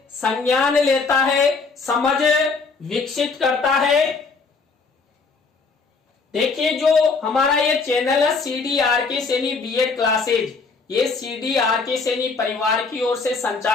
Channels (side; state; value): right; quieter; 4.5 dB